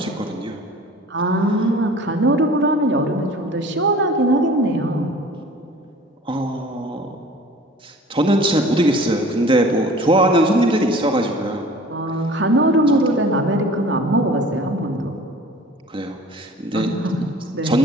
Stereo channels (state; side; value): normal; both; correlation 0.45